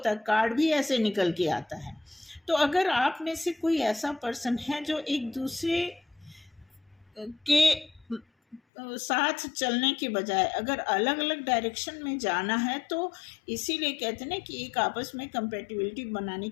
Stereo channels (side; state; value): right; drops out; at 8.6 s